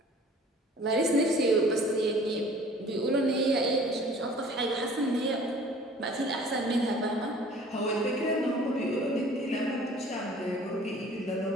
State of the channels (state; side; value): normal; both; correlation 0.50